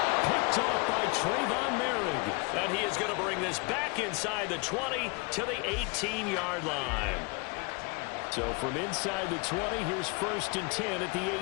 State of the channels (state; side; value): quieter; right; 29.2 dB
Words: Picked off by Trayvon Merrick. And he is going to bring this back inside the 20 to the 18-yard line. So from inside the 20, here's 1st and 10 at the